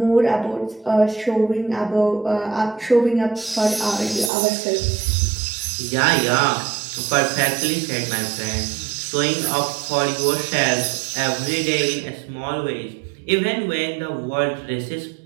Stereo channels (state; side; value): drops out; left; at 4.3 s